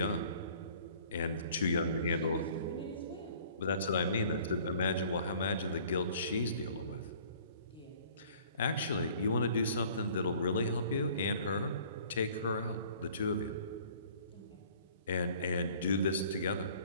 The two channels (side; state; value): both; inverted; correlation -0.53